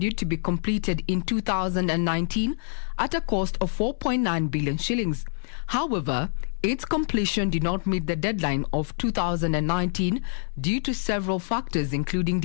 to be completed in 2019 at a cost of 4.9 billion shillings. However, its completion did not meet the deadline of 2019 due to several factors, including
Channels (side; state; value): right; silent; digital silence